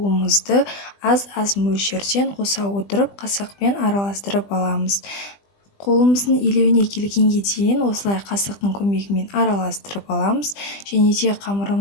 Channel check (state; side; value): late; right; 20 ms